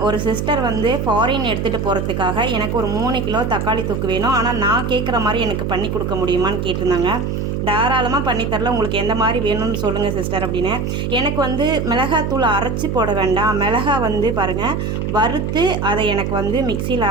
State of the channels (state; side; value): noise; right; hum, 2 dB below the sound